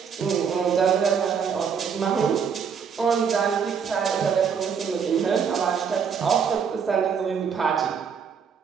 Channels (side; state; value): left; quieter; 6.7 dB